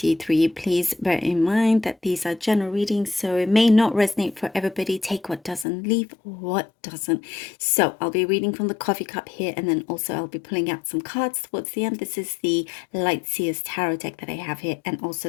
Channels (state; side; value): drops out; right; at 5.7 s